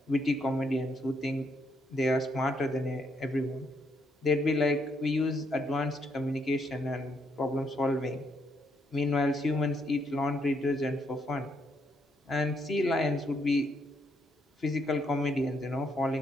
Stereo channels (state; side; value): normal; both; correlation 0.75